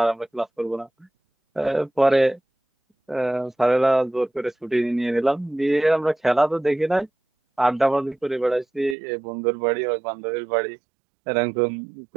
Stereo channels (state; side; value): drops out; left; at 9.0 s